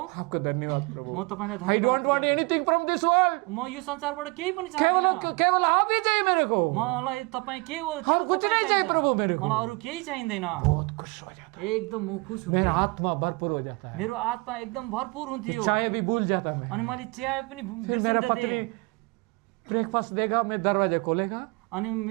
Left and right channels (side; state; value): left; quieter; 27.6 dB